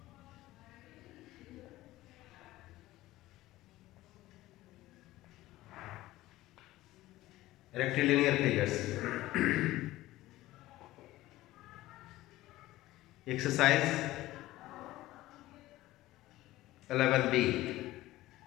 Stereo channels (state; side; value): quieter; right; 16.7 dB